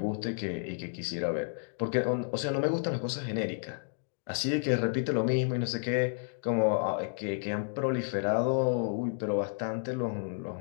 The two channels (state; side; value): silent; right; digital silence